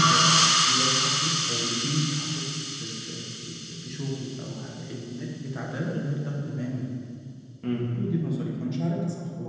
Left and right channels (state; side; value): identical; both; correlation 1.00